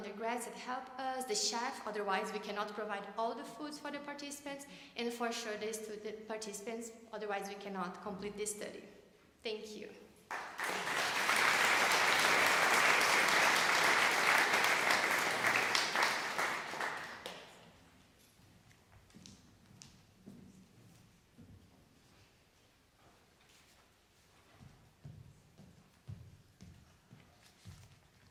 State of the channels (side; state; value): both; identical; correlation 1.00